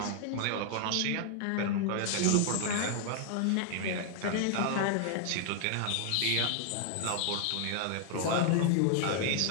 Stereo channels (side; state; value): both; different; correlation 0.00